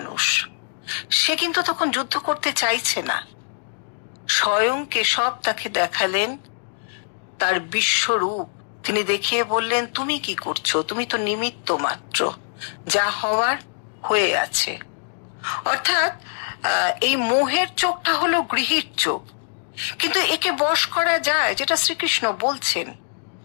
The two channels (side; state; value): right; silent; digital silence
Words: সে কিন্তু তখন যুদ্ধ করতে চাইছে না। স্বয়ং কেশব তাকে দেখালেন তার বিশ্বরূপ। তিনি দেখিয়ে বললেন, তুমি কি করছো? তুমি তো নিমিত্ত মাত্র, যা হওয়ার হয়ে আছে। অর্থাৎ এই মোহের চোখটা হলো গৃহীর চোখ, কিন্তু একে বশ করা যায়, যেটা শ্রীকৃষ্ণ বলছেন।